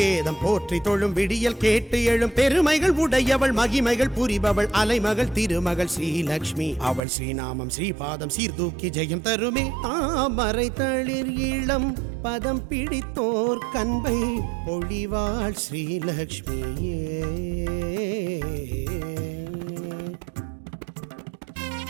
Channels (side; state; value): left; drops out; at 7.0 s